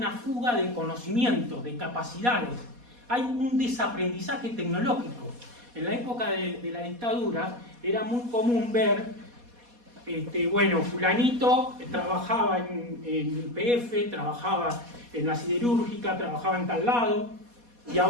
fuga de conocimientos, de capacidades, hay un desaprendizaje tecnológico. En la época de la dictadura era muy común ver, fulanito trabajaba en YPF, trabajaba en la siderúrgica, trabajaba en tal lado, y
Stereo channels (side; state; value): left; late; 4.2 ms